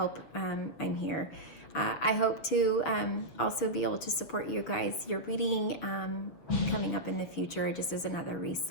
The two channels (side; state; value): right; late; 6.9 ms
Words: I'm here. I hope to also be able to support you guys, your reading coming up in the future, just as another